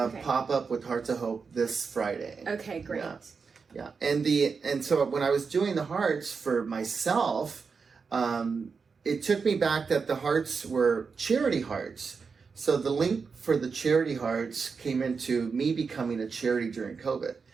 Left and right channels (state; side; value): quieter; left; 5.2 dB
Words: with Hearts of Hope this Friday. Okay, great. Yeah. And so when I was doing the hearts for myself, it took me back that the hearts were charity hearts. So the link for the charity hearts came into me becoming a charity during COVID.